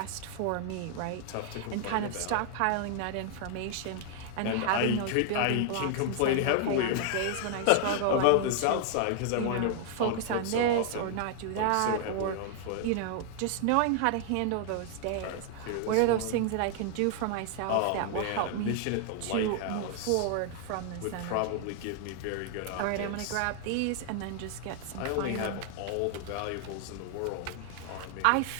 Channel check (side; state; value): both; different; correlation 0.00